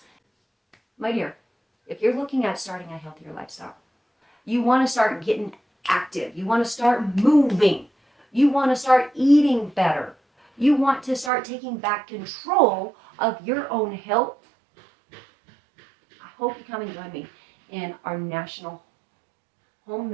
My dear, if you're looking at starting a healthier lifestyle, you want to start getting active. You want to start moving. You want to start eating better. You want to start taking back control of your own health. I hope you come and join me in our National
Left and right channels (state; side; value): drops out; left; at 11.3 s